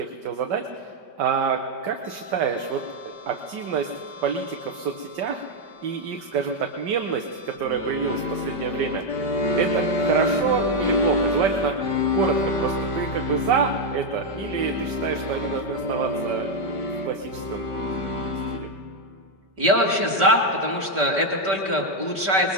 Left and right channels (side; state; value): left; late; 5.2 ms